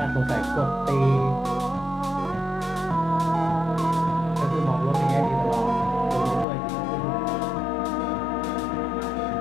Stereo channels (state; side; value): drops out; right; at 6.5 s